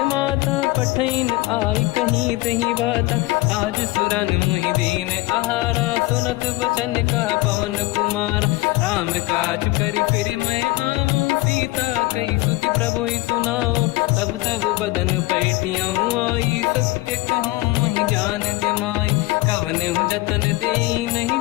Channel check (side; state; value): right; quieter; 20.0 dB